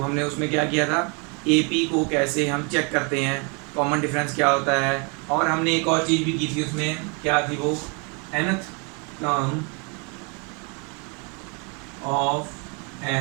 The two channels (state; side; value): quieter; left; 33.9 dB